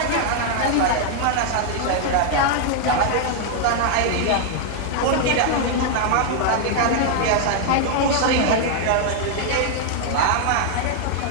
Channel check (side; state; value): both; different; correlation 0.00